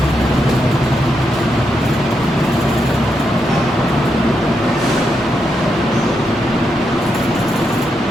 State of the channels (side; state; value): both; normal; correlation 0.83